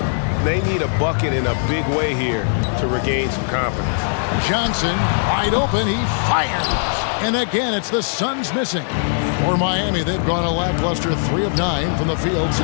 They need a bucket in a big way here to regain some confidence. Johnson wide open. He fires. And again, it's the Suns missing. For Miami, they've gone a lackluster 3 of 9 from the field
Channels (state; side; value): silent; right; digital silence